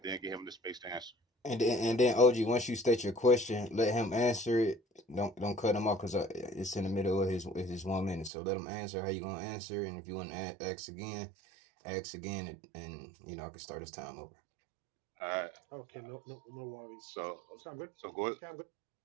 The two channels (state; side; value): drops out; left; at 8.3 s